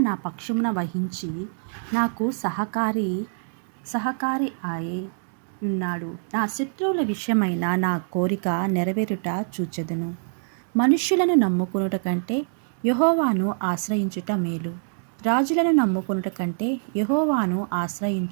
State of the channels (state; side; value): silent; left; digital silence